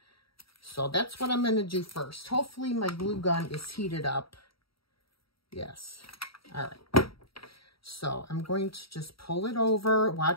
So that's what I'm going to do first. Hopefully my glue gun is heated up. Yes. All right. So I'm going to just pull it over.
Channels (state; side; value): late; right; 0.75 ms